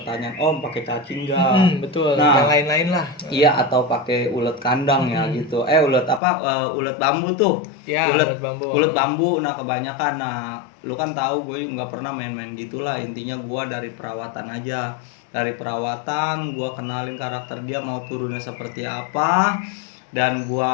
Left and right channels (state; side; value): drops out; right; at 6.2 s